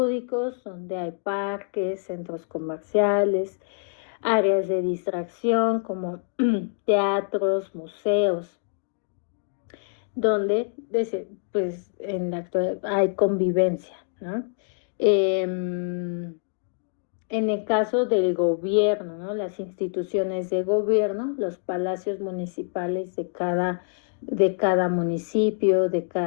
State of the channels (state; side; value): silent; right; digital silence